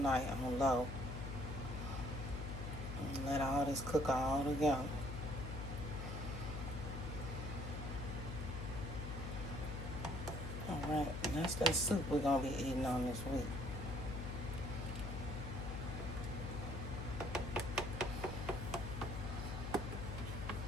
on low. And let all this cook all together. Alright, that's that soup we're going to be eating on this week.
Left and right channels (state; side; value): noise; left; hum, 5 dB below the sound